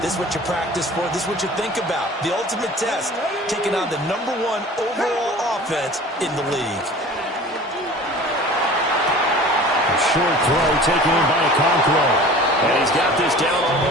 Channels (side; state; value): both; normal; correlation 0.42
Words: This is what you practice for. This is what you think about. The ultimate test, taking on the #1 overall offense in the league. Short throw taken in by Okonkwo. And he's got this down